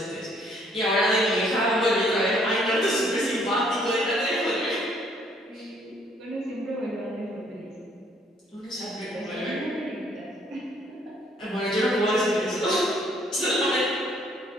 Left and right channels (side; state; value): both; normal; correlation 0.64